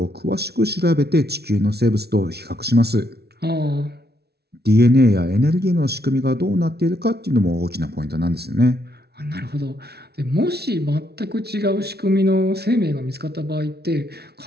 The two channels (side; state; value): left; late; 0.47 ms